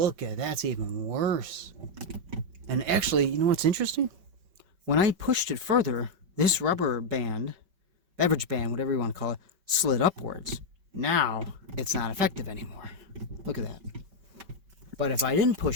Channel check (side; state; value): left; late; 5.2 ms